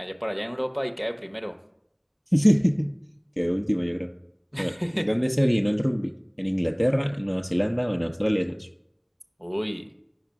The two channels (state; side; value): identical; both; correlation 1.00